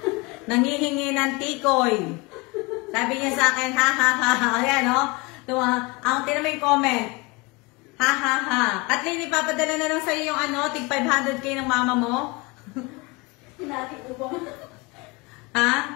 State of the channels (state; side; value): quieter; right; 25.6 dB